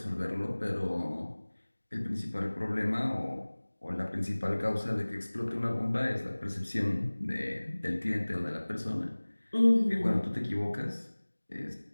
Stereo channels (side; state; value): both; inverted; correlation -1.00